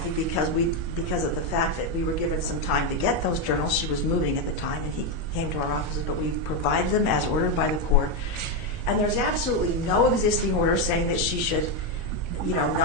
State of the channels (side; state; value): left; late; 1.4 ms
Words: because of the fact that we were given some time to get those journals. She was moving at the time, and he came to our offices, but we provided them as ordered by the court. And there's absolutely no existing order saying that she should,